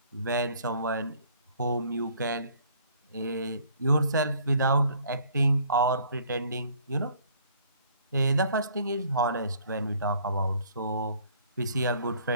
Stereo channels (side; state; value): both; inverted; correlation -0.59